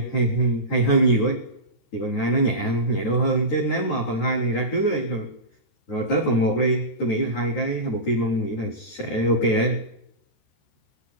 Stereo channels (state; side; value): late; right; 13 ms